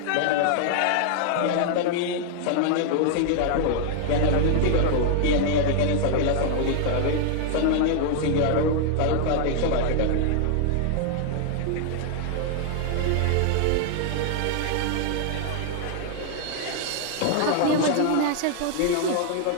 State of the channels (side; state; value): both; different; correlation 0.00